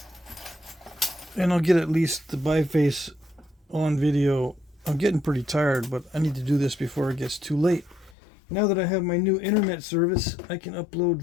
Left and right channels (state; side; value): drops out; right; at 8.2 s